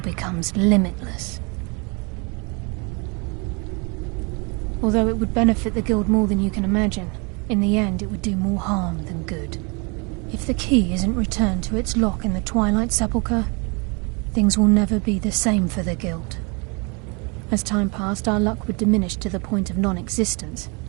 limitless. Although it would benefit the Guild more than you can imagine, in the end it would do more harm than good. If the key isn't returned to its lock in the Twilight Sepulchre, things will never be the same for the Guild. As time passed, our luck would diminish to the point of non-existence,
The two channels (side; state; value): left; quieter; 31.7 dB